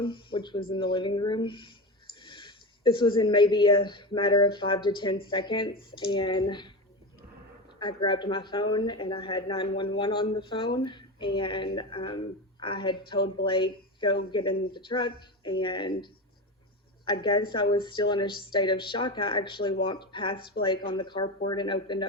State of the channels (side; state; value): both; normal; correlation 0.22